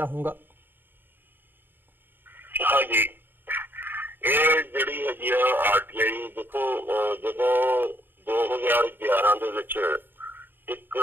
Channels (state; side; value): late; left; 0.095 ms